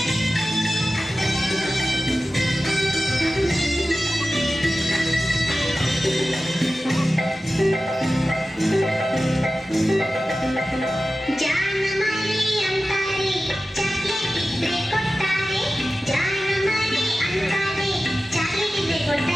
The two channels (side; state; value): both; normal; correlation 0.95